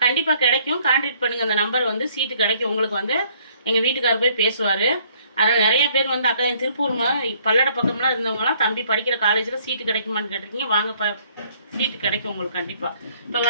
கண்டிப்பாக கிடைக்கும். கான்டாக்ட் பண்ணுங்கள், அந்த நம்பர் வந்து சீட்டு கிடைக்கும். உங்களுக்கு வந்து எங்கள் வீட்டுக்காரர் போய் பேசுவார். அதனால் நிறைய பேர் வந்து அக்கா என் திருப்பூர் பல்லட பக்கம்லாம் இருந்தவங்களாம் தம்பி படிக்கிற காலேஜில் சீட்டு கிடைக்குமான்னு கேட்டிருக்கீங்க. வாங்க சீட்டு கிடைக்கும் உங்களுக்கு கண்டிப்பாக. இப்போ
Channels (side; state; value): both; inverted; correlation -0.63